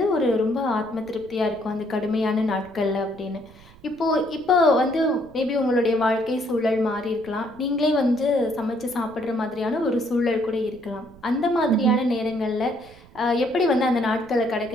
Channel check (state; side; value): noise; right; rumble, 24 dB below the sound